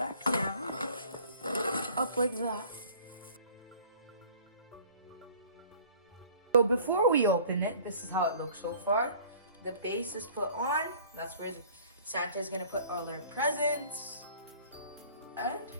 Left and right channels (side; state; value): both; inverted; correlation -0.50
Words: down, up like that. So before we open it, this is how it looks so far. The base is put on. That's where Santa is gonna put all their presents. And